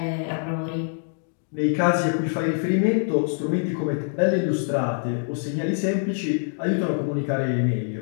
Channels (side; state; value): right; silent; digital silence